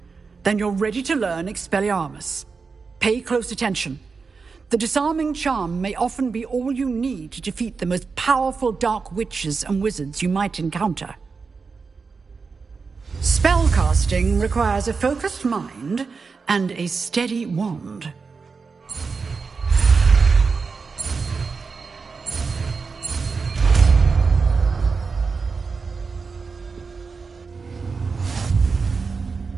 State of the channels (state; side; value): quieter; left; 4.8 dB